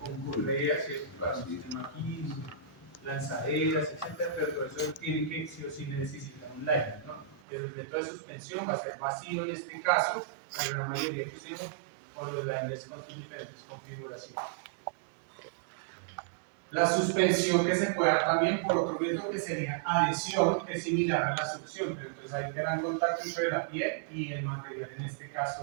correas, para un sistema aquí, lanzaderas, etc. Pero todo eso tiene que sí o sí necesitar un liner, ¿no? Pero el método de suspensión va a ser vacío en este caso, la gran mayoría que usemos, por los liners con sus diferentes configuraciones. La suspensión que se puede dar también por otro método que sería adhesión, que es similar a la succión, pero entonces hay gran contacto entre la piel y el material, en este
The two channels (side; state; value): left; drops out; at 7.4 s